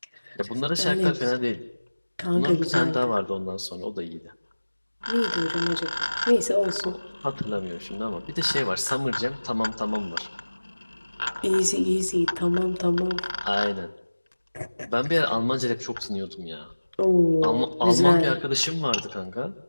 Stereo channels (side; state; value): both; inverted; correlation -1.00